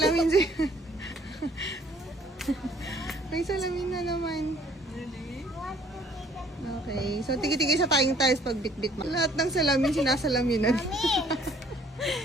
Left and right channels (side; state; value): both; normal; correlation 0.59